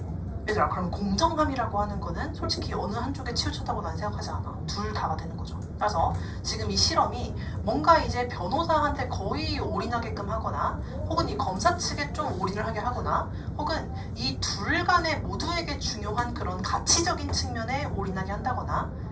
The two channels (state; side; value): identical; both; correlation 1.00